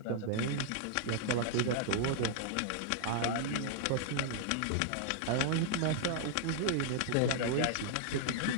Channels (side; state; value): both; different; correlation -0.01